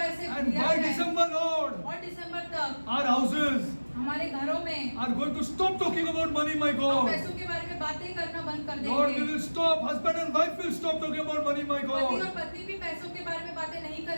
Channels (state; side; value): inverted; both; correlation -1.00